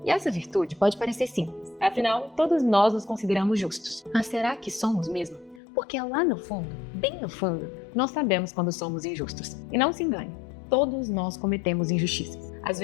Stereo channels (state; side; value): drops out; right; at 5.6 s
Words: E essa virtude pode parecer simples, afinal, todos nós nos consideramos justos. Mas será que somos mesmo? Porque lá no fundo, bem no fundo, nós sabemos quando somos injustos. E não se engane, todos nós cometemos injustiças. Às